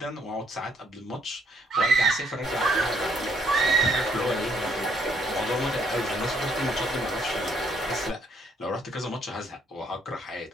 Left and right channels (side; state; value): both; normal; correlation 0.68